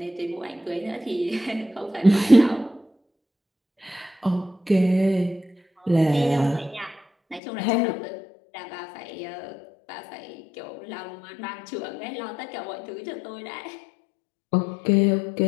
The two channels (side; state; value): right; drops out; at 7.4 s